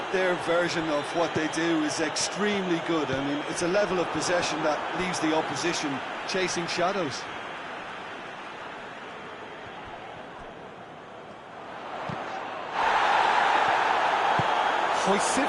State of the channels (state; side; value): identical; both; correlation 1.00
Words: their version of what they do is extremely good. I mean, it's a level of possession that leaves the opposition chasing shadows. Hoists it